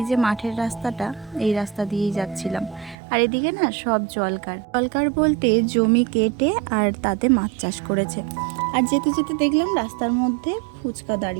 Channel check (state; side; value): drops out; left; at 3.0 s